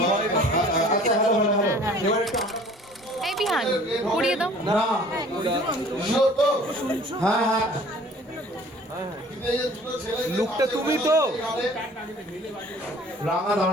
আচ্ছা হ্যালো হ্যালো হ্যালো, এবার একটু এই বিহান পড়িয়ে দাও না, হ্যাঁ হ্যাঁ লুকটা তুমি তো রাঙা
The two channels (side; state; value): both; normal; correlation 0.50